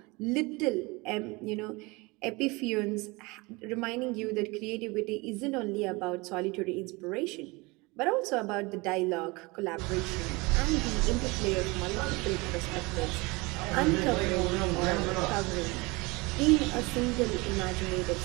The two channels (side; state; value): left; quieter; 25.1 dB